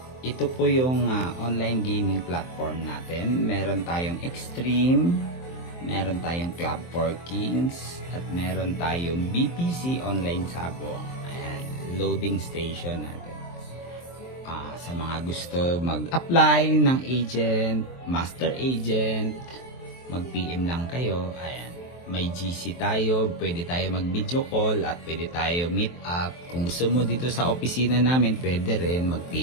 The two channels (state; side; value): late; right; 23 ms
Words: ito po yung online gaming platform natin. Meron tayong Extreme, meron tayong Club for Kings, at meron tayong BPC Online Sabong. Ayan, loading station natin. Sa mga gusto mag-apply ng agent, master agent, mag-PM lang kayo. Ayan. May GC tayo, pwede tayo mag-video call at pwede tayo meet up. Kung gusto mo dito sa opisina namin, pwede rin,